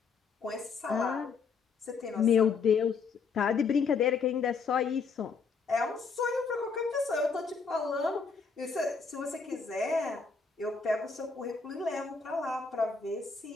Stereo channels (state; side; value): quieter; right; 5.1 dB